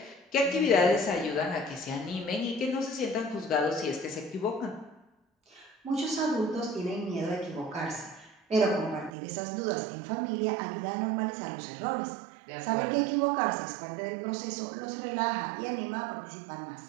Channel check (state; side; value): drops out; left; at 9.1 s